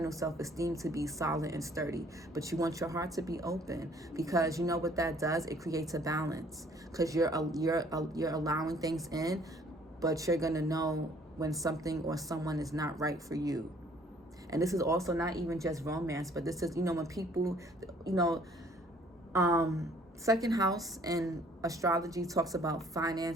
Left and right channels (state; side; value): normal; both; correlation 0.59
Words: self-esteem to be solid and sturdy, but you want your heart to be open, because you know what that does? It creates a balance, because you're allowing things in, but you're gonna know when something or someone is not right for you. And this is also not even just romance, but this is, you know, when people, you know, second house in astrology talks about